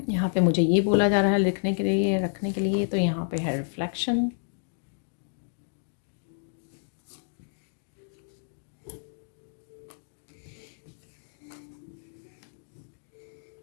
यहाँ पे मुझे ये बोला जा रहा है लिखने के लिए, रखने के लिए। तो यहाँ पे है रिफ्लेक्शन।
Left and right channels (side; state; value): right; silent; digital silence